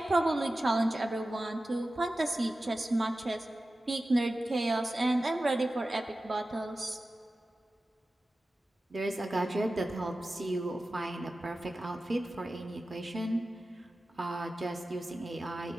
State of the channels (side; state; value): both; normal; correlation 0.95